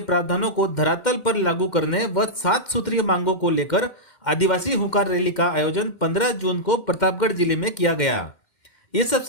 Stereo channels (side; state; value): right; late; 2.1 ms